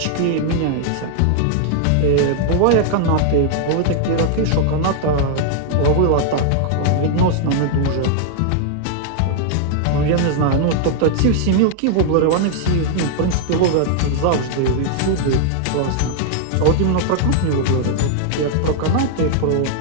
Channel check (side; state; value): both; different; correlation 0.00